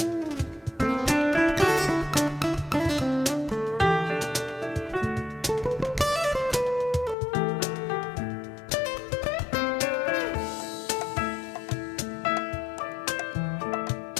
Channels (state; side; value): drops out; right; at 7.2 s